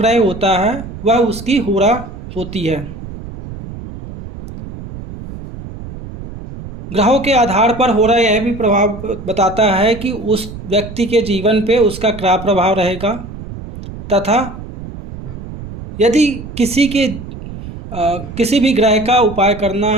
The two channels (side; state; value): right; noise; rumble, 12 dB below the sound